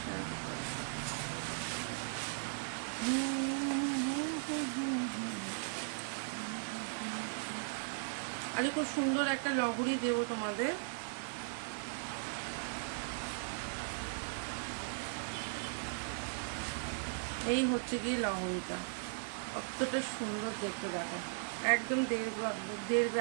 আরে খুব সুন্দর একটা লহরি দেবো তোমাদের। এই হচ্ছে গিয়ে লহরিটা, কতটা সুন্দর দেখতে দেখো, একদম 1.5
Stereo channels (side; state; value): left; silent; digital silence